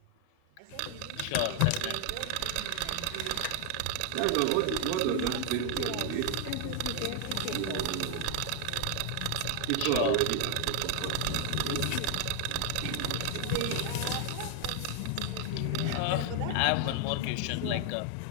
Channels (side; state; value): both; different; correlation 0.00